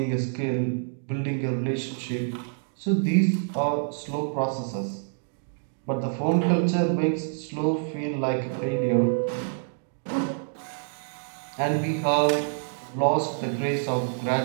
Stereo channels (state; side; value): silent; left; digital silence